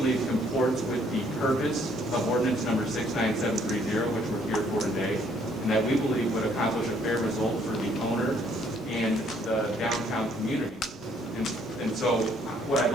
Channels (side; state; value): both; normal; correlation 0.65